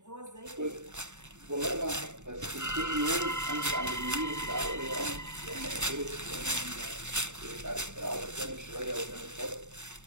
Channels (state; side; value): late; left; 0.84 ms